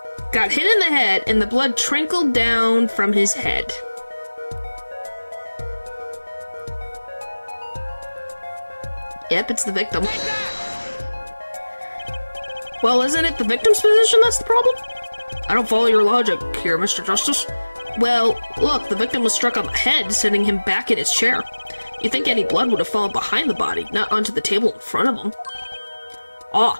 got hit in the head and the blood trickled down from his head. Yep, it's the victim. Well, isn't it the victim's position that's the problem? I don't follow your logic here, Mr. Justice. Well, look, the victim was struck on the head, sending him back in his chair. You'd think any blood would have fallen behind the body, not onto the table in front of him. Ah,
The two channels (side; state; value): both; inverted; correlation -1.00